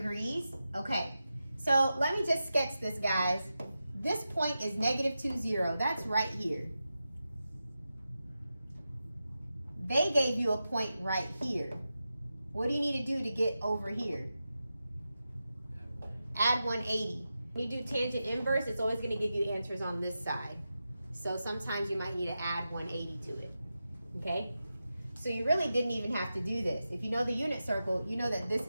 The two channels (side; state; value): both; inverted; correlation -0.91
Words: Okay, so let me just sketch this, guys. This point is -2, 0. That's right here. They gave you a point right here. What do you need to do to get over here? Add 180. When you do tangent inverse, it's always going to give you answers on this side. So sometimes you might need to add 180 to it. Okay? So you really didn't even have to do this. If you know the unit circle, you know that this